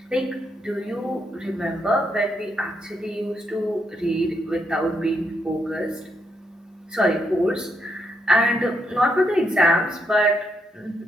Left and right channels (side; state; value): both; normal; correlation 0.79